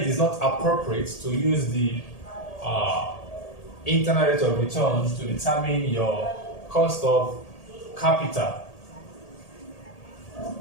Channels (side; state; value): right; late; 1.8 ms